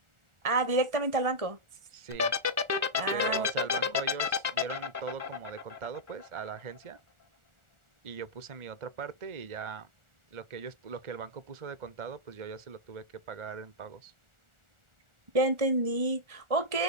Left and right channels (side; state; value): left; late; 1.4 ms